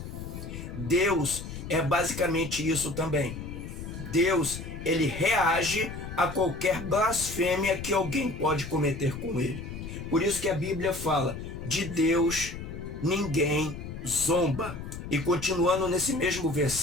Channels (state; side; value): noise; left; rumble, 9 dB below the sound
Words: Deus é basicamente isso também. Deus, ele reage a qualquer blasfêmia que alguém pode cometer com ele. Por isso que a Bíblia fala, de Deus ninguém zomba. E continuando nesse mesmo